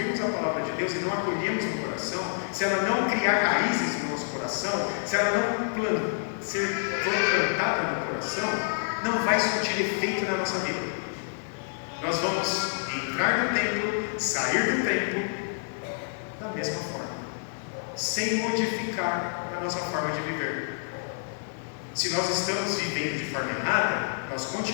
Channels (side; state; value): right; silent; digital silence